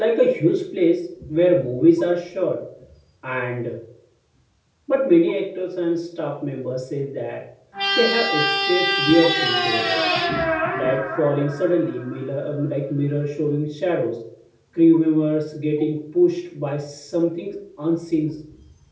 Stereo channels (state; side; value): identical; both; correlation 1.00